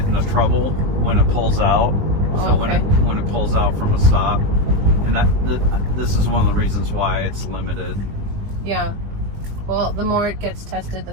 into trouble when it pulls out. So when it pulls out from a stop, and this is one of the reasons why it's limited. Yeah. Well, the more it gets tested, the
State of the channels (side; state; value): left; late; 20 ms